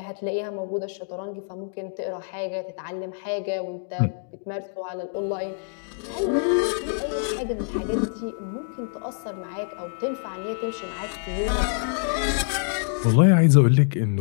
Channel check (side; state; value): right; silent; 61 dB below the other